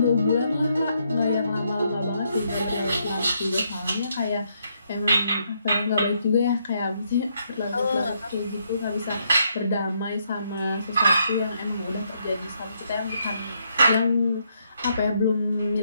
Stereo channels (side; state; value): both; inverted; correlation -0.75